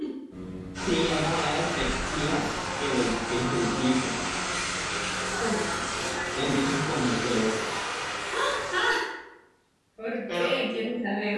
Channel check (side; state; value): both; identical; correlation 1.00